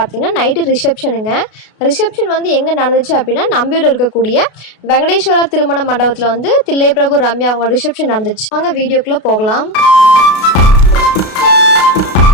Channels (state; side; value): late; right; 32 ms